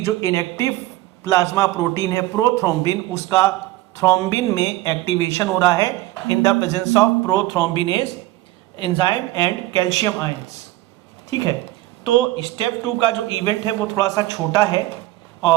इनएक्टिव प्लाज्मा प्रोटीन है प्रोथ्रोम्बिन, उसका थ्रोम्बिन में एक्टिवेशन हो रहा है in the presence of prothrombinase enzyme and calcium ions. ठीक है, तो स्टेप 2 का जो इवेंट है वो थोड़ा सा छोटा है,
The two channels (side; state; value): left; quieter; 17.0 dB